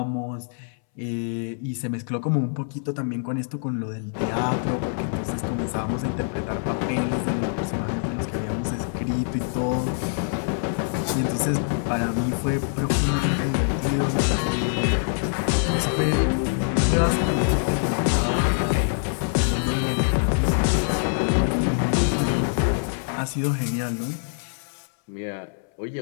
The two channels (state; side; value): silent; right; 62 dB below the other